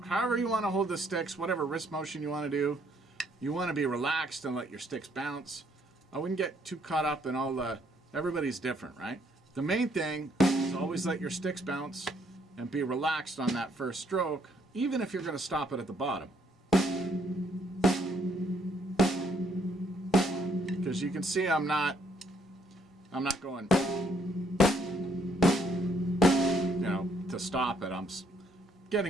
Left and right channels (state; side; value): normal; both; correlation 0.68